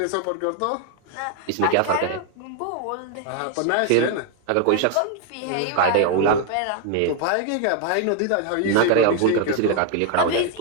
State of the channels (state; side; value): different; both; correlation 0.00